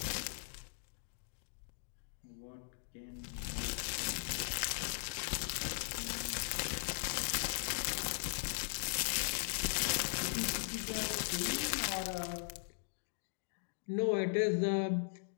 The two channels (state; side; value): silent; right; digital silence